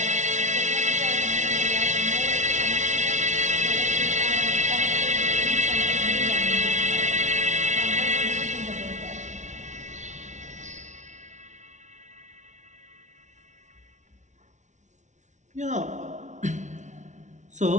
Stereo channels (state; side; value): late; left; 0.35 ms